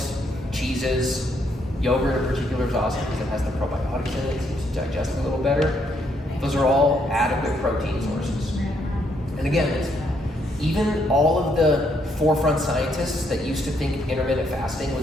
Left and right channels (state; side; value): normal; both; correlation 0.73